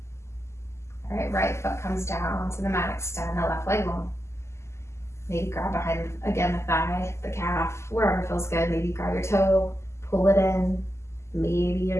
All right, right foot comes down to the mat, extend the left leg long. Maybe grab behind, again, the thigh, the calf, wherever feels good. Maybe grab your toe, pull it in. Maybe your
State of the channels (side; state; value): right; late; 0.13 ms